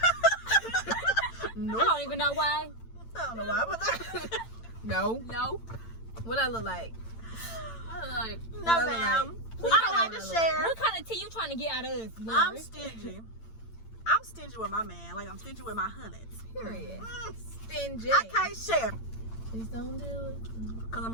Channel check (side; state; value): right; late; 8.9 ms